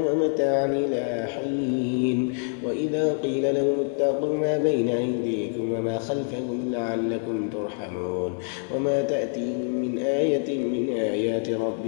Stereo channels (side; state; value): right; silent; 56 dB below the other